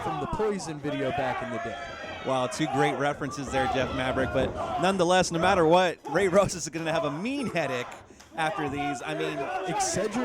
from the Poison video back in the day. Wow, 2 great references there, Jeff Maverick. But nonetheless, no matter what, Ray Rosas is going to have a mean headache after these. I mean,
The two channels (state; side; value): identical; both; correlation 1.00